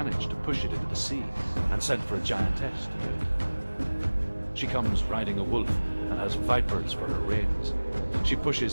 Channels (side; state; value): both; inverted; correlation -1.00